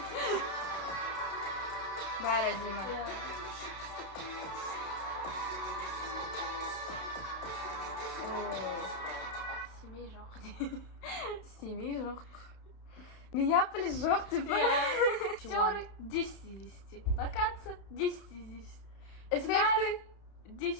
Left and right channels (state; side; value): late; right; 31 ms